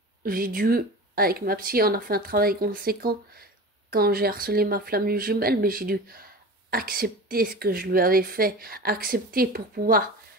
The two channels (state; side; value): normal; both; correlation 0.33